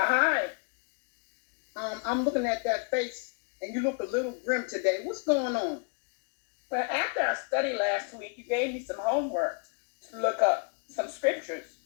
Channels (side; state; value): right; quieter; 37.5 dB